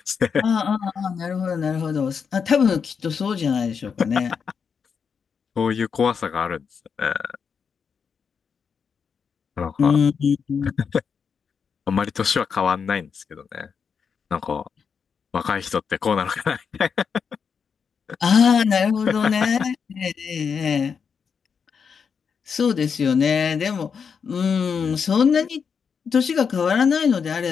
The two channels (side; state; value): right; quieter; 6.3 dB